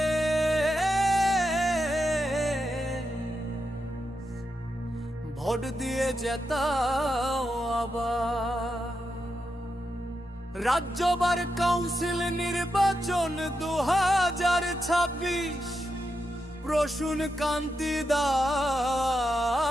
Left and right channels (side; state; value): both; normal; correlation 0.86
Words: ভোট দিয়ে জেতাও আবার। রাজ্যবার কাউন্সিল নির্বাচন 2026 প্রসূন কান্তি দাস